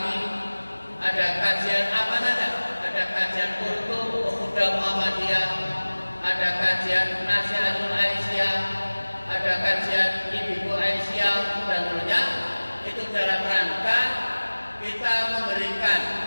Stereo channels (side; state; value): both; inverted; correlation -1.00